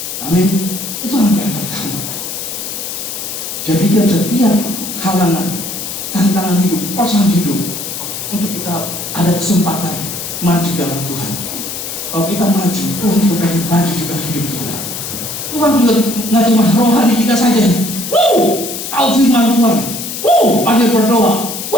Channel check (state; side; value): noise; left; hiss, 6 dB below the sound